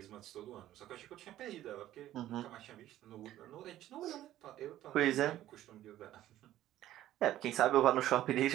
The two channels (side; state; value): left; quieter; 13.5 dB